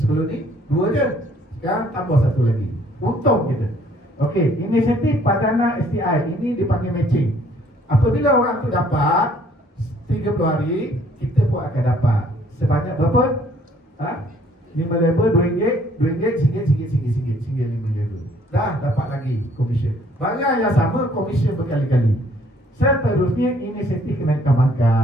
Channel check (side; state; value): both; normal; correlation 0.61